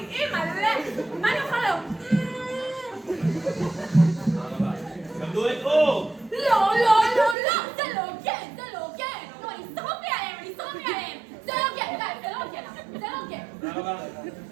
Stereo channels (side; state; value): left; drops out; at 7.4 s